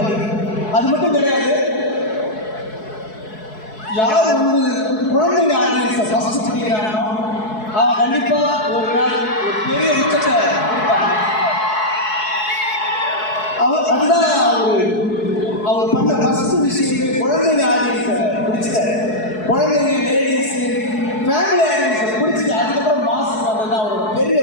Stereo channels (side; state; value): right; late; 4.7 ms